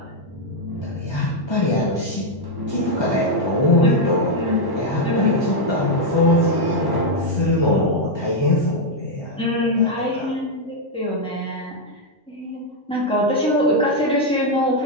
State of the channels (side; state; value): both; normal; correlation 0.00